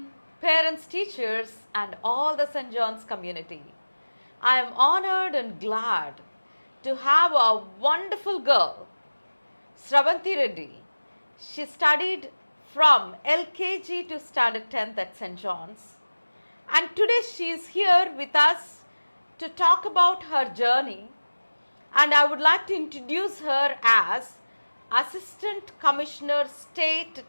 parents, teachers and all the St. John's community. I am honored and glad to have a wonderful girl, SravanthiReddy. She studied from LKG to Standard 10th at St. John's, and today she is here with us to talk about her journey, and I would like to introduce her as Assistant Commissioner State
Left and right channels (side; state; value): both; inverted; correlation -1.00